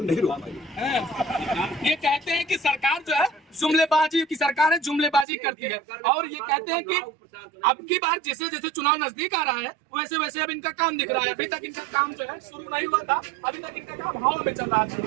नहीं रोक पाई। ये कहते हैं कि सरकार जो है जुमलेबाजी की सरकार है, जुमलेबाजी करती है और ये कहते हैं कि अब की बार जैसे जैसे चुनाव नजदीक आ रहा है वैसे वैसे अब इनका काम दिख रहा है। अभी तक इनका काम जो है शुरू नहीं हुआ था, अभी तक इनका काम हवा में चल रहा था।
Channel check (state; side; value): drops out; left; at 5.2 s